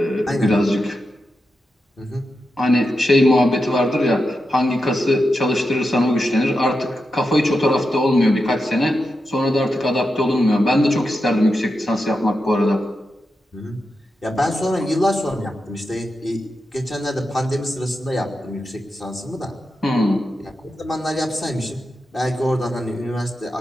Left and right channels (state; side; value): normal; both; correlation 0.88